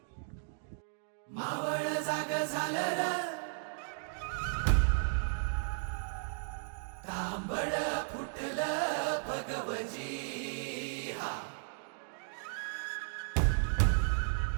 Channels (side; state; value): left; silent; digital silence